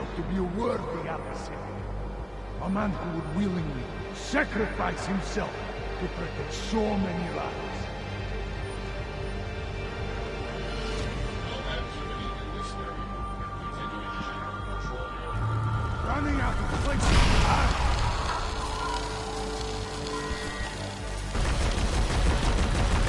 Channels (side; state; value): both; identical; correlation 1.00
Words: to be a worthy adversary. A man who would willingly sacrifice himself to protect so many lives. Running out of place.